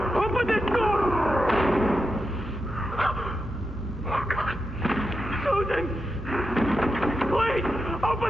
Open this door! Oh, God. Susan! Please!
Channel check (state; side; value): normal; both; correlation 0.87